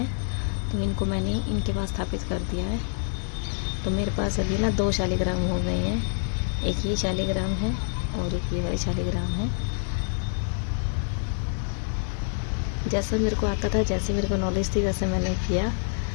तो इनको मैंने इनके पास स्थापित कर दिया है। तो मेरे पास अभी ना 2 शालिग्राम हो गए हैं, एक ये शालिग्राम है और एक ये वाली शालिग्राम है। जैसा मेरे को आता था, जैसे मेरे को नॉलेज थी, वैसे मैंने किया।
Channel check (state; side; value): silent; right; digital silence